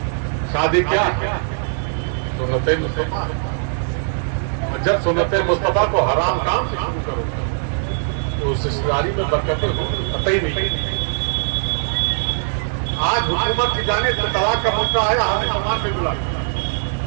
شادی کیا سنت مصطفیٰ، اور جب سنت مصطفیٰ کو حرام کام سے شروع کرو तो उस रिश्तेदारी में बरकतें हो कतई नहीं। आज हुकूमत की जाने से तलाक का मुद्दा आया, हमें सामान में मिला,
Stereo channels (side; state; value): left; silent; digital silence